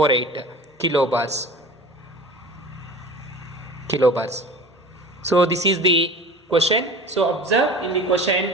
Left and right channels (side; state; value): both; normal; correlation 0.39